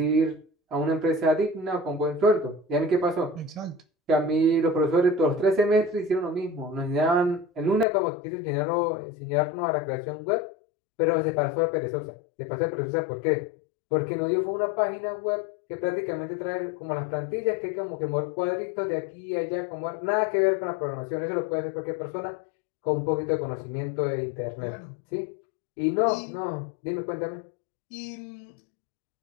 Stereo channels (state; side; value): drops out; right; at 7.9 s